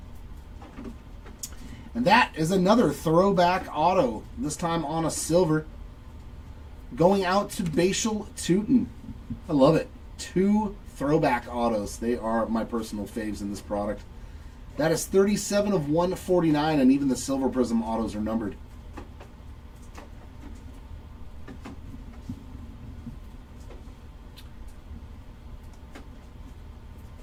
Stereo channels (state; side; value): identical; both; correlation 1.00